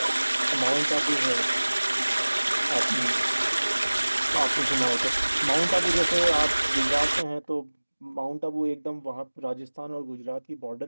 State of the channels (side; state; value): both; inverted; correlation -1.00